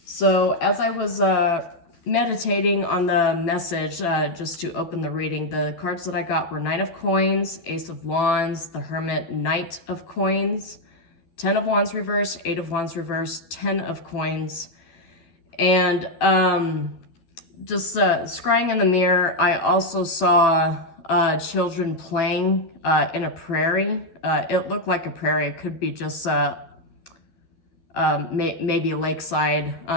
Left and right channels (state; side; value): late; right; 12 ms